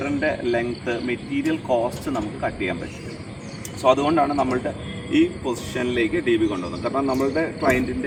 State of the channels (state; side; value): identical; both; correlation 1.00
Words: ലെങ്ത്ത്, മെറ്റീരിയൽ കോസ്റ്റ് നമുക്ക് കട്ട് ചെയ്യാൻ പറ്റും. സോ അതുകൊണ്ടാണ് നമ്മളുടെ ഈ പൊസിഷനിലേക്ക് DB കൊണ്ടുവന്നത്. കാരണം നമ്മളുടെ